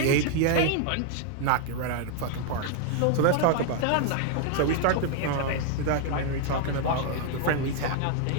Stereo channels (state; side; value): different; both; correlation 0.00